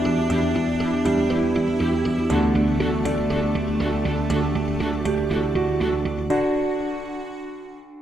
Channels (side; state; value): both; normal; correlation 0.83